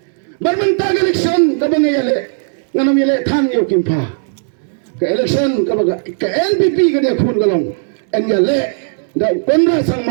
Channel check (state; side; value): silent; left; 70 dB below the other